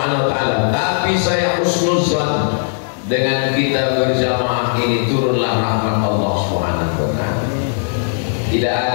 wa taala. Tapi saya husnuzan dengan kita berjamaah ini turunlah rahmat Allah Subhanahu wa taala. Tidak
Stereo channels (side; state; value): right; silent; digital silence